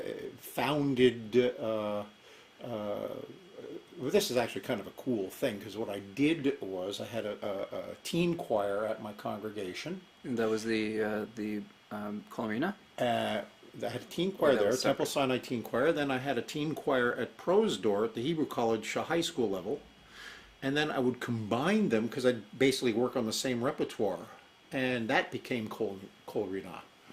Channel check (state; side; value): identical; both; correlation 1.00